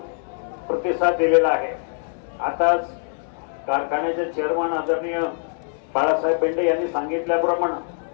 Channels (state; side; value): silent; right; digital silence